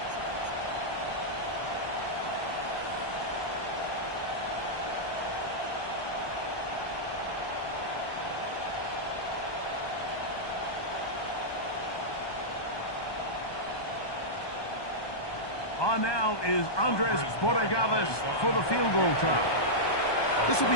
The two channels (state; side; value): late; right; 1.2 ms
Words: On now is Andres Borregales for the field goal try. This will